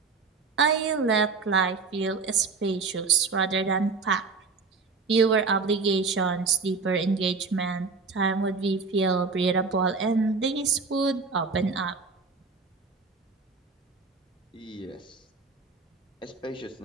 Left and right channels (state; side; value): quieter; left; 4.6 dB